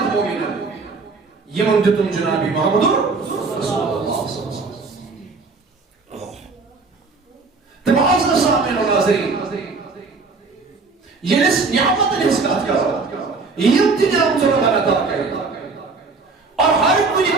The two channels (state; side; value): quieter; left; 4.2 dB